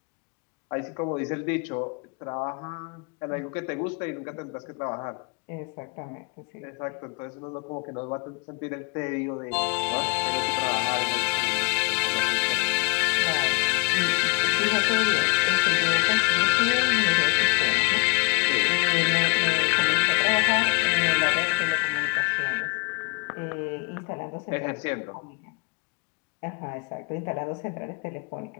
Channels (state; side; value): quieter; right; 30.5 dB